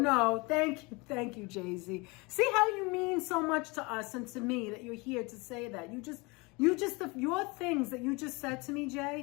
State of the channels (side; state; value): right; quieter; 26.6 dB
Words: Thank you, Jay-Z. See how you mean so much to us and to me that you're here to say that. Your things that you just said to me,